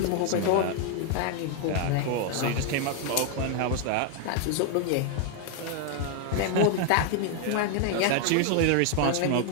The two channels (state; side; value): different; both; correlation 0.00